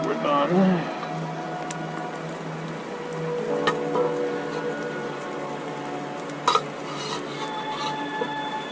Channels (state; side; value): identical; both; correlation 1.00